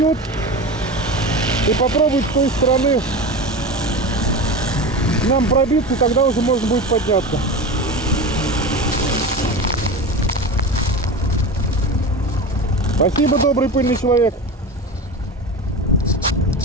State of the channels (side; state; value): both; normal; correlation 0.27